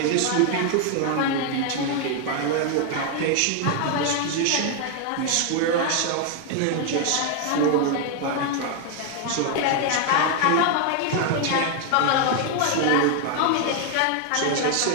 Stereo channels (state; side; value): different; both; correlation 0.00